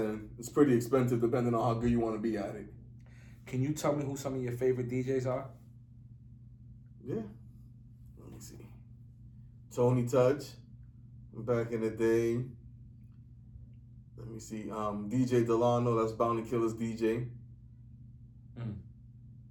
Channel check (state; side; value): identical; both; correlation 1.00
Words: it's pretty expensive depending on how good you want to be at it. Can you tell me who some of your favorite DJs are? Yeah. Let me see. Tony Touch, back in the day. Let me see. DJ Delano, that's Bounty Killer's DJ.